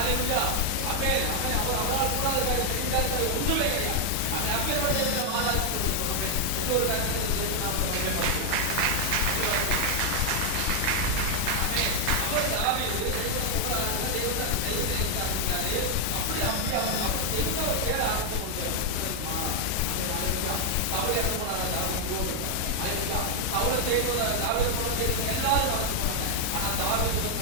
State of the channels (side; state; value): both; different; correlation 0.00